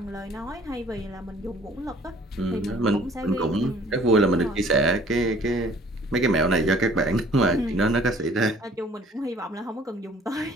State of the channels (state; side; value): normal; both; correlation 0.54